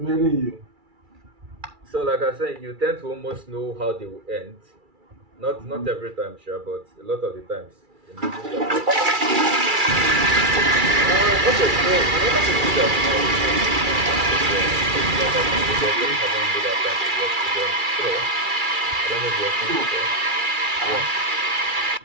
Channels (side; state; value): left; late; 2.3 ms